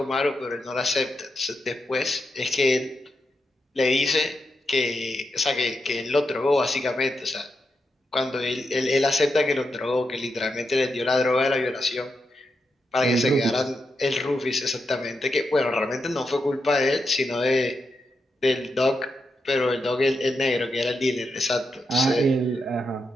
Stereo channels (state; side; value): normal; both; correlation 0.85